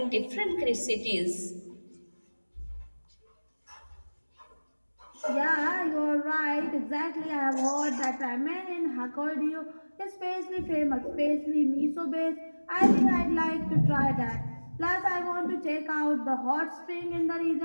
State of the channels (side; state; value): both; inverted; correlation -1.00